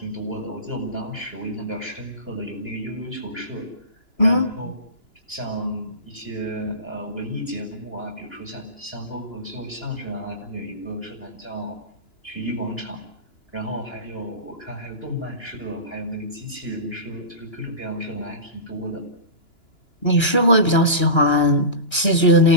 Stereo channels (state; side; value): late; right; 2.9 ms